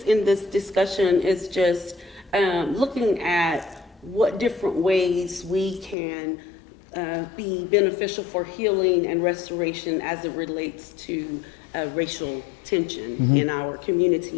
in this discussion is just looking at what different ways we can be beneficial for healing and restoration as it relates to racial tension in our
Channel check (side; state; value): right; drops out; at 6.0 s